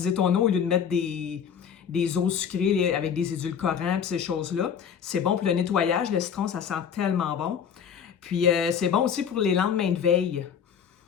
ton eau au lieu de mettre des eaux sucrées avec des édulcorants et ces choses-là. C'est bon pour le nettoyage. Le citron, ça sent tellement bon. Puis c'est bon aussi pour les lendemains de veille.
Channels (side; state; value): right; quieter; 7.7 dB